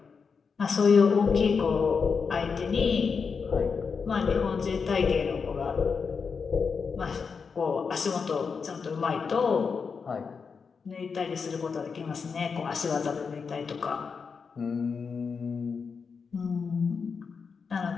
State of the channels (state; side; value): quieter; right; 5.5 dB